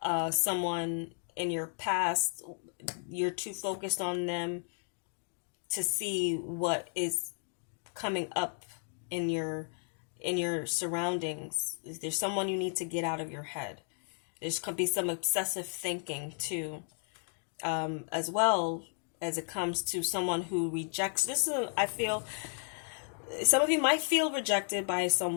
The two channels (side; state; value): right; silent; 55 dB below the other